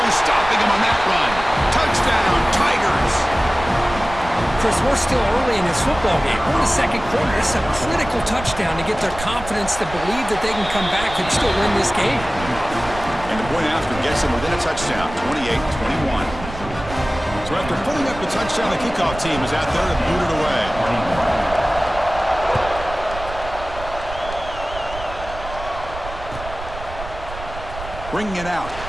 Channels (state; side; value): noise; right; rumble, 12 dB below the sound